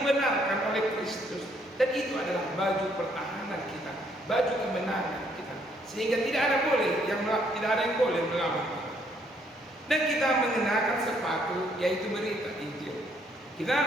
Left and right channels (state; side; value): normal; both; correlation 0.68